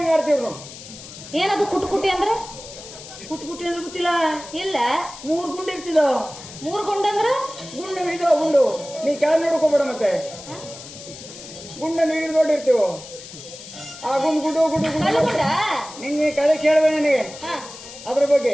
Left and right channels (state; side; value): noise; left; hiss, 15 dB below the sound